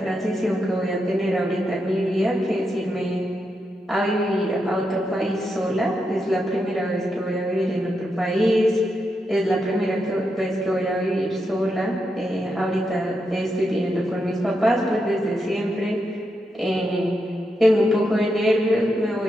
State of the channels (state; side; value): normal; both; correlation 0.84